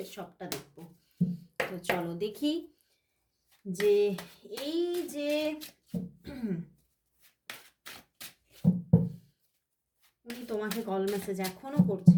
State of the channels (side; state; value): both; identical; correlation 1.00